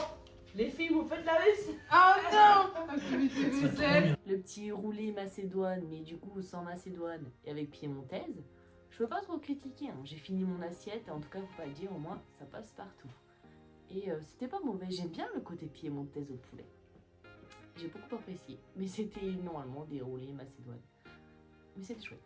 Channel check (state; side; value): identical; both; correlation 1.00